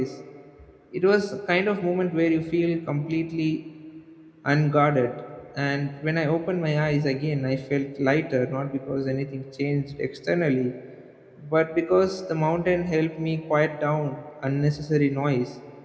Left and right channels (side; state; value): both; identical; correlation 1.00